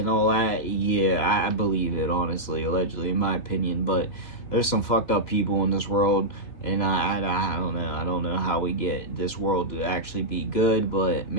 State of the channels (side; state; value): right; late; 3.0 ms